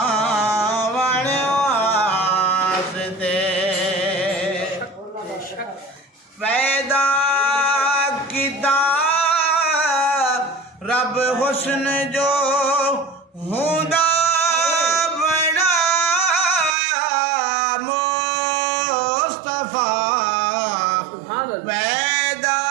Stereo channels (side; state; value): left; drops out; at 16.8 s